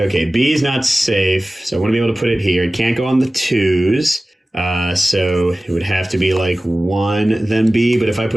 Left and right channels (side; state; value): both; normal; correlation 0.97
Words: B is not safe, so I want to be able to put it here. It can't go on the 2s, so it would have to be like 1, then B. But if I